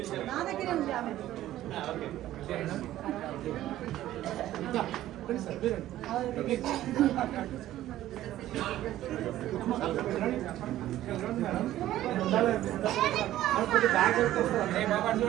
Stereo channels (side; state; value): left; quieter; 13.8 dB